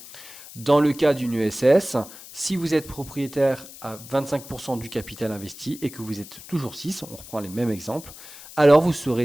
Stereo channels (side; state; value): left; noise; hiss, 16 dB below the sound